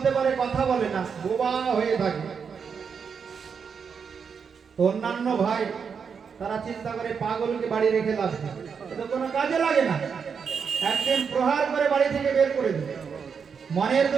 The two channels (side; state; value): left; quieter; 6.3 dB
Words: পারে, কথা বলে না, বোবা হয়ে থাকে। তো অন্যান্য ভাই তারা চিন্তা করে পাগলকে বাড়ি রেখে লাভ নেই, এটা কোনো কাজে লাগে না। একদিন প্রহার করে বাড়ি থেকে বের করে দিল। মনের